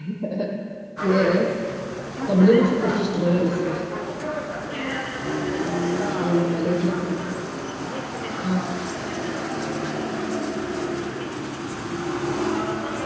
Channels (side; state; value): both; identical; correlation 1.00